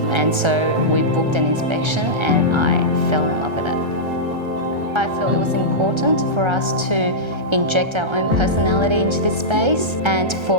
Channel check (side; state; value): left; late; 1.3 ms